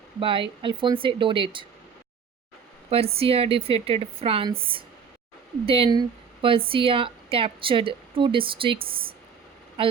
by Alphonse Daudet. Persia defeated France. Then Persia captured two districts,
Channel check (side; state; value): left; quieter; 6.4 dB